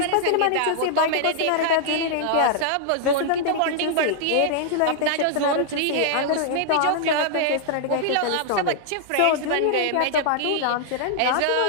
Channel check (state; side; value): different; both; correlation -0.01